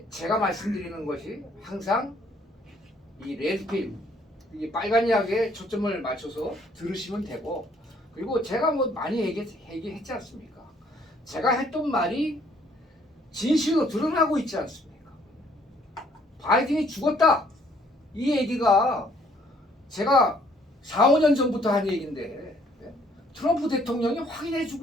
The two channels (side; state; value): both; normal; correlation 0.63